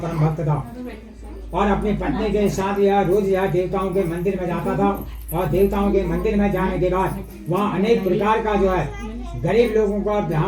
भक्त था, और अपनी पत्नी के साथ यह रोज यह देवताओं के मंदिर में जाता था। और देवताओं के मंदिर में जाने के बाद वहाँ अनेक प्रकार का जो है गरीब लोगों को,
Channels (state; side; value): identical; both; correlation 1.00